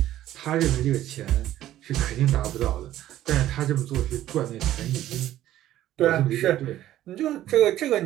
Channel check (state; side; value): quieter; left; 13.4 dB